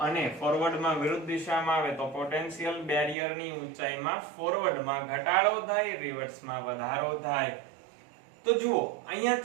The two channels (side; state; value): left; drops out; at 3.2 s